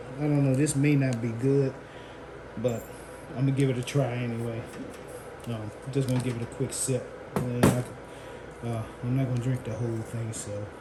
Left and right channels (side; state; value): both; identical; correlation 1.00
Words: I don't know. This may not be good, but I'm gonna give it a try anyway. I'm just gonna give it a quick sip. And I'm not gonna drink the whole thing, so